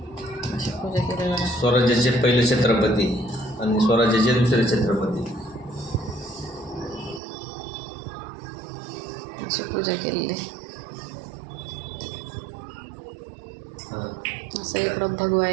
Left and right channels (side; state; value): left; drops out; at 7.2 s